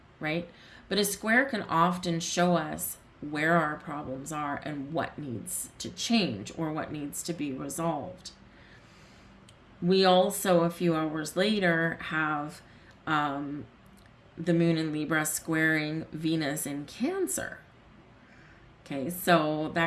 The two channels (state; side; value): identical; both; correlation 1.00